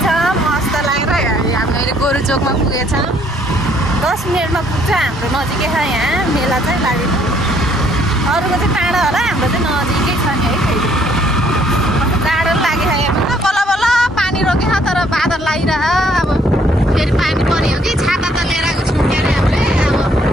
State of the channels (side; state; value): both; normal; correlation 0.65